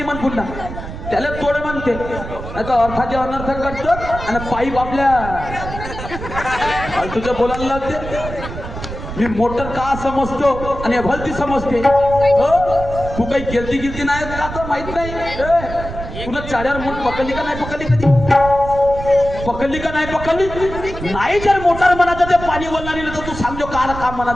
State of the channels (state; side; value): noise; right; rumble, 9 dB below the sound